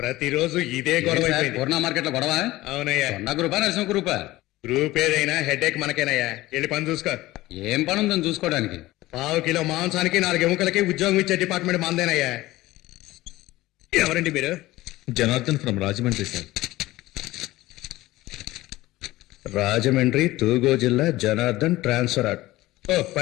ఇదే గొడవ అయిపోయింది. పూర్ణ మార్కెట్ లో గొడవ. అవునయ్యా. కొండ గ్రూపా నరసింహ గ్రూపా? గ్రూప్ ఏదైనా హెడేక్ మనకేనయ్యా. వెళ్ళి పని చూసుకో. ఏం పని ఉందని చూసుకోవడానికి? 1/2 కిలో మాంసానికి 4 ఎముకలకి ఉద్యోగం ఇచ్చే డిపార్ట్మెంట్ మందేనయ్యా. ఎవరండి మీరు? Janardhan from Rajahmundry sir. రాజమండ్రి తూగో జిల్లా జనార్దన్ ట్రాన్స్ఫర్. ఓ,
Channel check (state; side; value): quieter; right; 17.7 dB